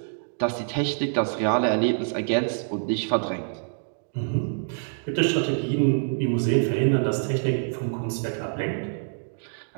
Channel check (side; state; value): left; silent; digital silence